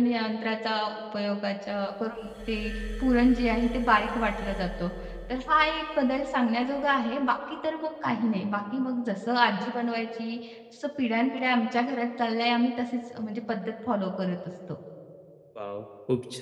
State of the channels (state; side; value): identical; both; correlation 1.00